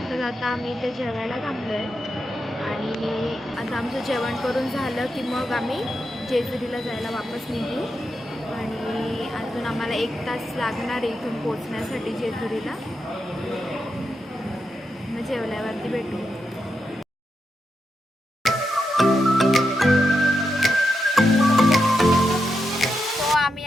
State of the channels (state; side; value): normal; both; correlation 0.86